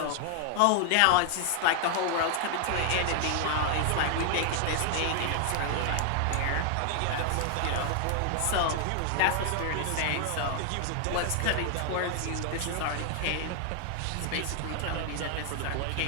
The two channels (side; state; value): both; different; correlation 0.00